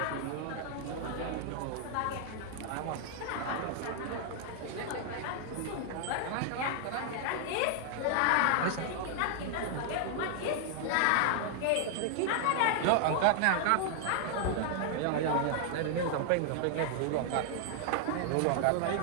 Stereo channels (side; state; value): both; different; correlation 0.00